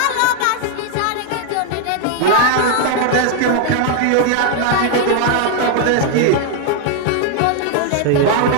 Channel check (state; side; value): different; both; correlation 0.00